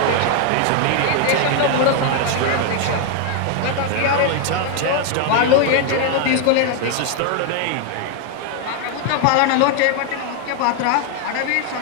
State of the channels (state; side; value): different; both; correlation 0.01